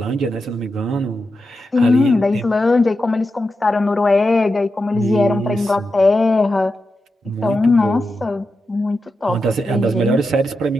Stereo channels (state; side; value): normal; both; correlation 0.89